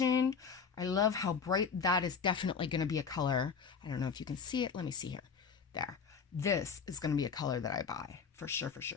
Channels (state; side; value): quieter; right; 6.0 dB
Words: I love how bright that is. Definitely going to be a color. I don't know if you can see it. Let me see here. There. This is going to be a color that I buy. For sure, for